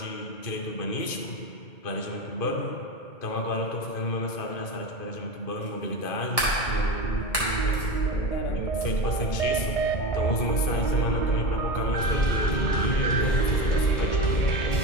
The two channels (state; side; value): late; right; 2.2 ms